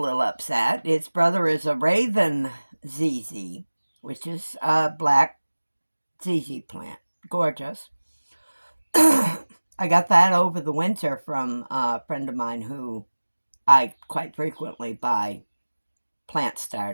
upset. Its brother is a Raven ZZ, which is a black ZZ plant. Gorgeous. I got that over the winter from a friend of mine who I quite frequently buy plant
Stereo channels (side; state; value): both; inverted; correlation -1.00